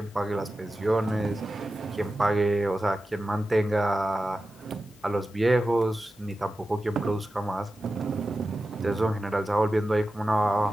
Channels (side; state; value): both; normal; correlation 0.93